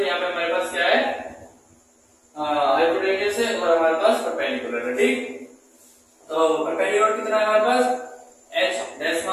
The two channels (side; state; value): both; identical; correlation 1.00